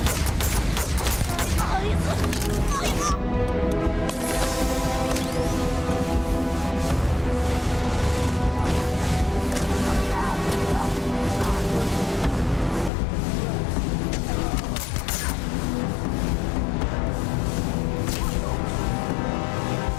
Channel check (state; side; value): drops out; right; at 12.9 s